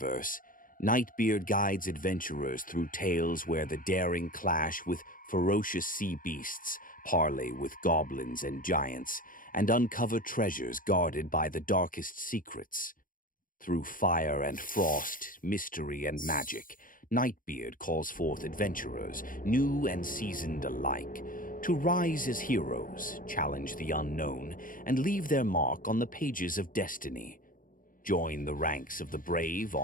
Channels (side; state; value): right; late; 0.40 ms